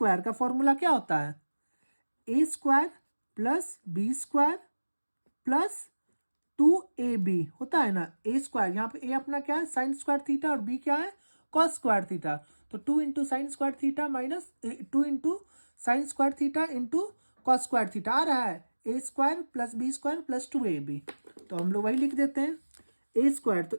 का फॉर्मूला क्या होता है, A square plus B square plus 2ab होता है ना। ए स्क्वायर यहाँ पे ए अपना क्या है साइन स्क्वायर थीटा और बी क्या है कॉस स्क्वायर थीटा, तो 2 into sine square theta minus 2 into sine square theta into cos square theta आ रहा है A square plus B square plus 2ab। तो हम लोग वही लिख देते हैं, ए स्क्वायर तो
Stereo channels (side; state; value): both; inverted; correlation -1.00